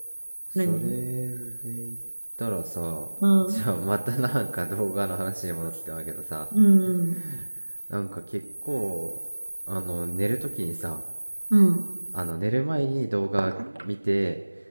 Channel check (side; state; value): both; inverted; correlation -1.00